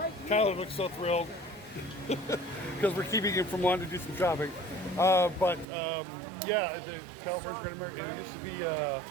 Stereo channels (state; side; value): drops out; left; at 5.7 s